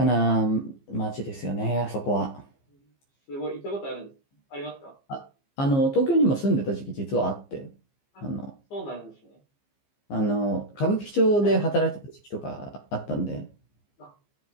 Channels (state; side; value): late; right; 15 ms